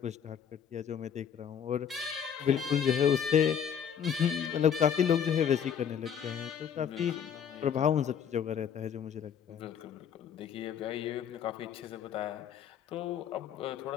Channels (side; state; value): right; quieter; 8.2 dB